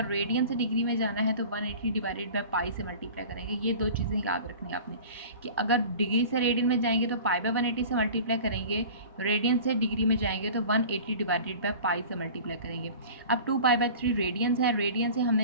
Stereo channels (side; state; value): both; inverted; correlation -0.40